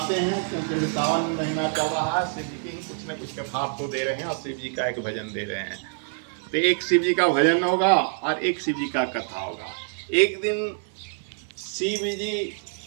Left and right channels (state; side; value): silent; left; digital silence